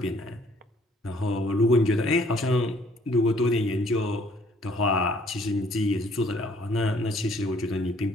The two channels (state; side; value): normal; both; correlation 0.61